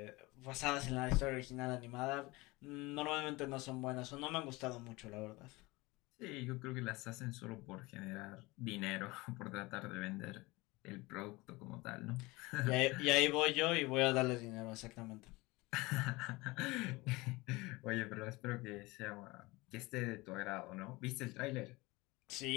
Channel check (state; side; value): quieter; right; 22.5 dB